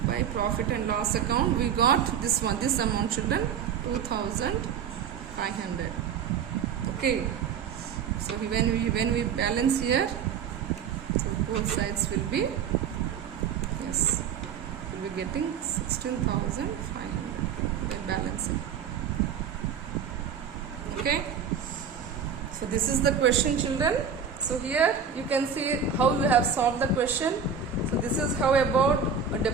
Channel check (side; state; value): left; quieter; 7.1 dB